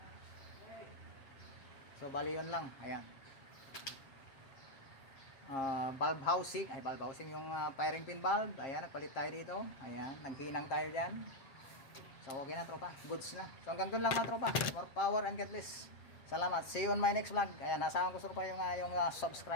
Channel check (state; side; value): late; right; 7.5 ms